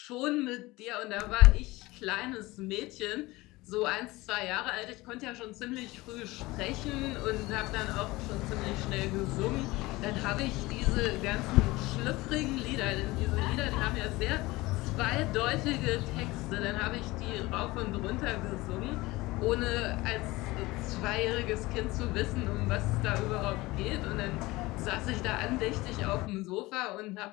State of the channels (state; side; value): quieter; right; 20.6 dB